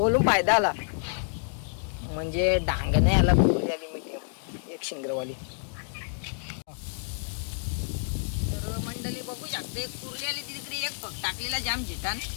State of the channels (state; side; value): silent; right; digital silence